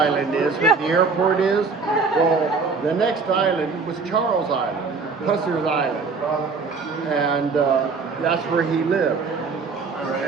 is, where the airport is. Well, the next island was Charles Island, Pusser's Island, and that's where he lived.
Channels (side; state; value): left; quieter; 4.6 dB